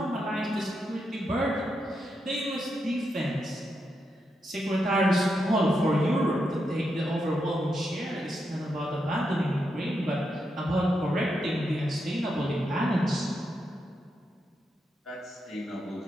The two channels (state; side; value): normal; both; correlation 0.84